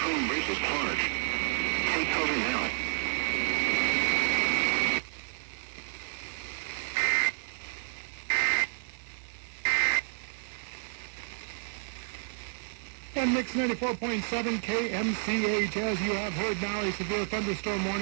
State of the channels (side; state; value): left; silent; 57 dB below the other